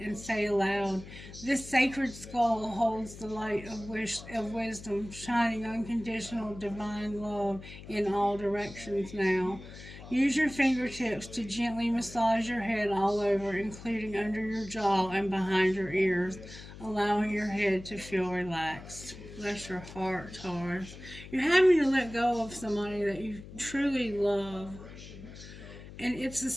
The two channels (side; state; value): left; noise; hum, 15 dB below the sound